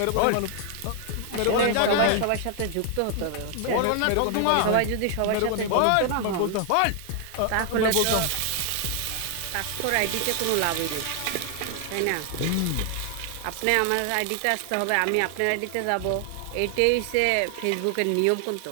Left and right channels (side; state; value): both; different; correlation 0.00